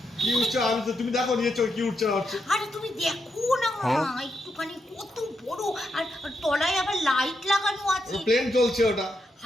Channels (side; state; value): both; normal; correlation 0.82